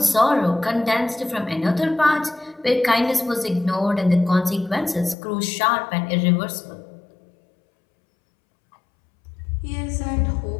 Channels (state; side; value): drops out; right; at 5.2 s